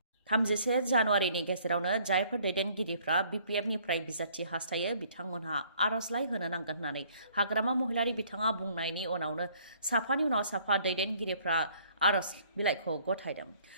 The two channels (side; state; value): both; inverted; correlation -0.60